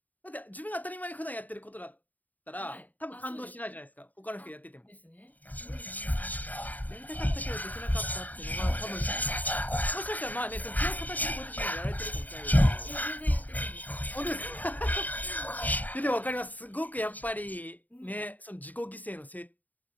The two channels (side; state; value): right; late; 0.080 ms